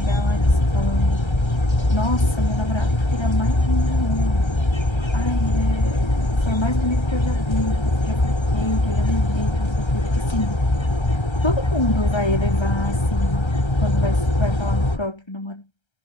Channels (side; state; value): right; late; 1.3 ms